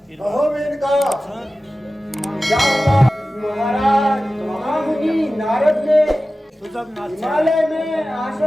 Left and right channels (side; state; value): both; normal; correlation 0.95